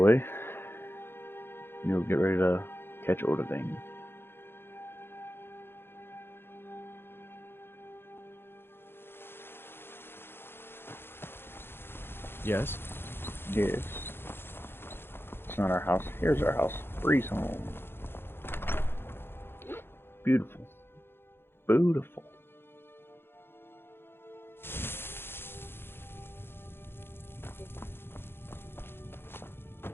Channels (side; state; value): right; late; 0.11 ms